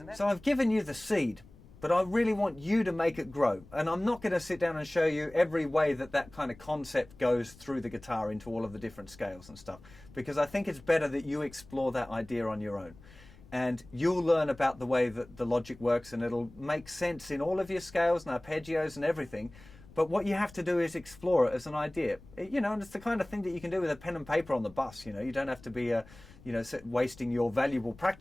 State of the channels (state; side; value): noise; left; rumble, 22 dB below the sound